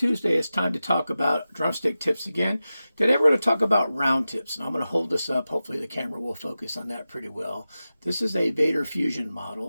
It's time to talk about drumstick tips again. Today we're going to talk about round tips, and I'm going to hold this up. Hopefully the camera will focus on that pretty well. This is a Vader Fusion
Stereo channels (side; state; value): both; inverted; correlation -0.94